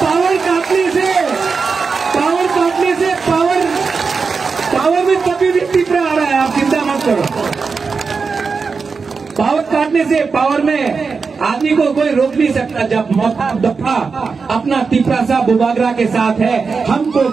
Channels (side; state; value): left; quieter; 4.9 dB